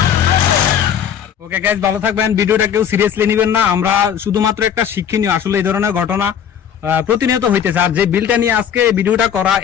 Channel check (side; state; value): right; quieter; 8.7 dB